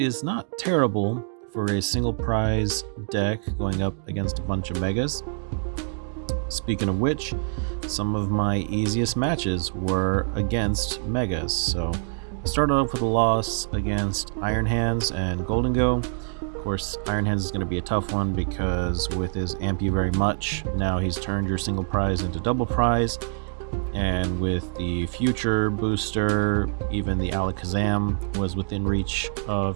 not terrible for a single prize deck going up against a bunch of megas. Speaking of which, some of my easiest matches were against megas. So I started off with a loss against Iron Hands and Golden Go. Of course, Iron Hands is going to be a tough one because with his Amp You Very Much, now he's turned your single prize into double prize. And with the future booster, even the Alakazam was within reach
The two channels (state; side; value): silent; left; digital silence